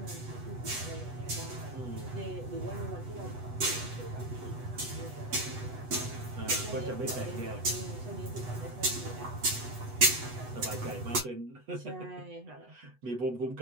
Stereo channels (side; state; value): left; late; 8.1 ms